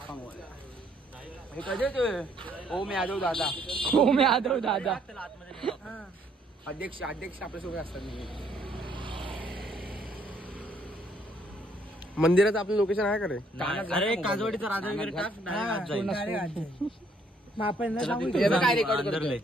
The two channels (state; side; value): normal; both; correlation 0.67